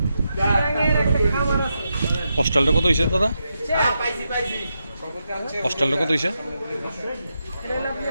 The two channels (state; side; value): inverted; both; correlation -0.85